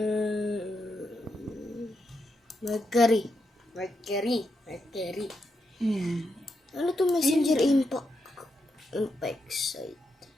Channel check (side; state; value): both; normal; correlation 0.83